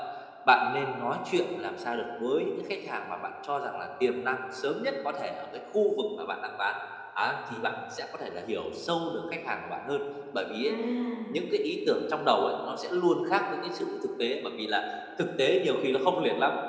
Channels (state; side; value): identical; both; correlation 1.00